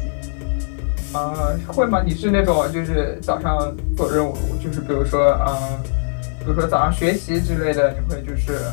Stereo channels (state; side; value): silent; right; digital silence